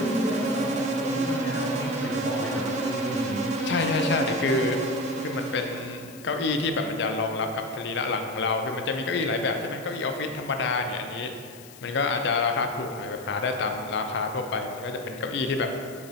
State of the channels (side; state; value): left; noise; hiss, 19 dB below the sound